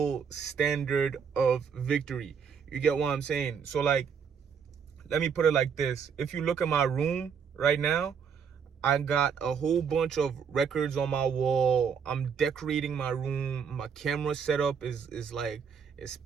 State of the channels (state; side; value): quieter; left; 6.7 dB